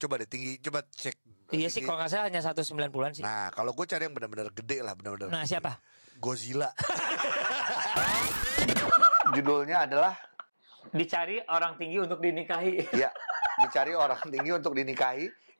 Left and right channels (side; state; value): both; inverted; correlation -1.00